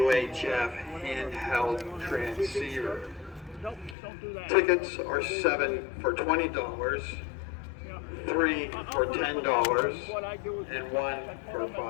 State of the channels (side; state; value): right; drops out; at 4.0 s